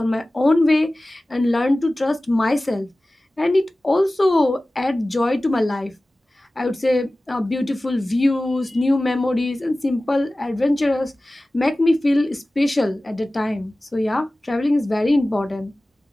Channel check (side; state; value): both; normal; correlation 0.97